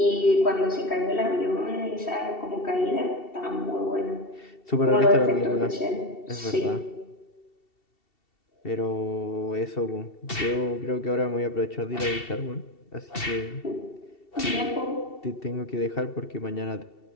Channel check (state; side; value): late; right; 2.7 ms